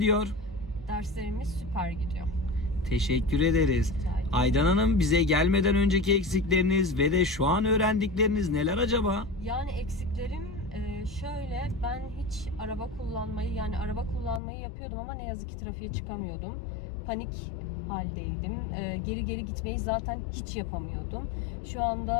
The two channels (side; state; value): right; drops out; at 14.4 s